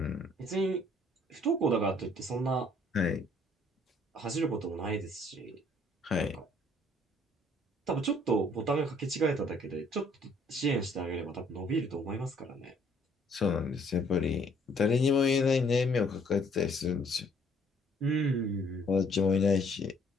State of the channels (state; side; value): normal; both; correlation 0.62